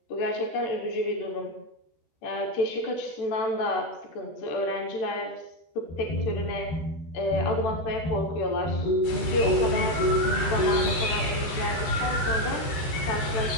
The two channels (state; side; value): late; right; 13 ms